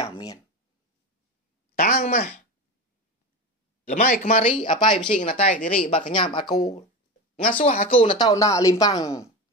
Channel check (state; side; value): normal; both; correlation 0.24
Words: mian. Tang mah. Lemai kemari apa yang bising natai diri bak kenyam aku. Ngasuh aku nak tahu nak limpang